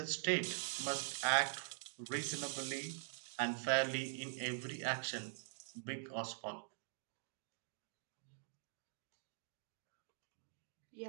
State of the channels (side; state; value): left; silent; digital silence